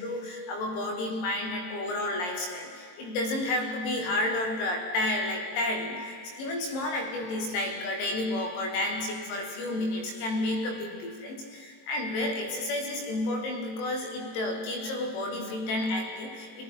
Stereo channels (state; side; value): late; right; 22 ms